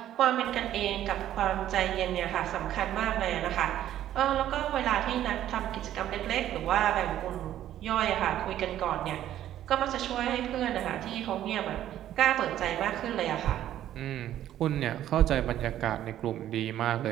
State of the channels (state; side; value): quieter; left; 12.1 dB